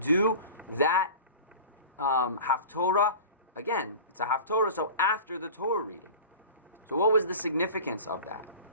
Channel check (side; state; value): both; inverted; correlation -0.37